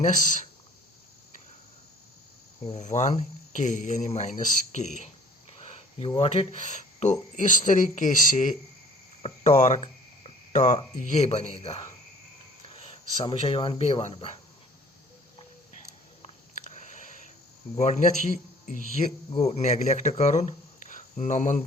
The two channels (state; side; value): normal; both; correlation 0.52